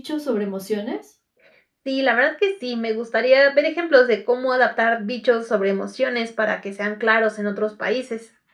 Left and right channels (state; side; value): identical; both; correlation 1.00